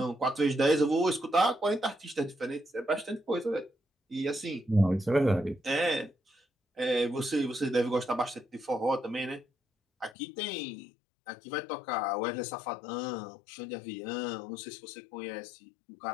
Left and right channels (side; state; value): right; drops out; at 10.2 s